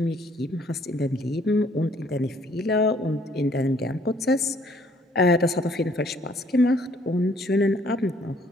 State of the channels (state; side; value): normal; both; correlation 0.62